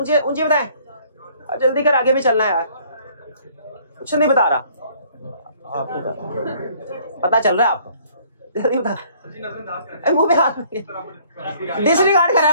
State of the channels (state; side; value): inverted; both; correlation -0.59